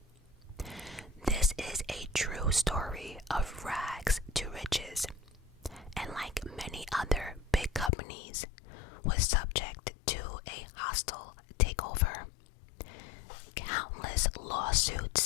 This is a true story of rags to riches, and like many other big companies, was subject to a hostile takeover, countless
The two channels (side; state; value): right; drops out; at 7.9 s